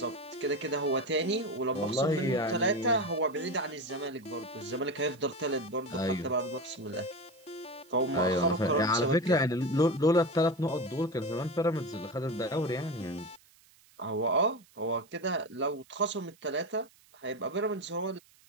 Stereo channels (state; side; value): noise; right; hiss, 29 dB below the sound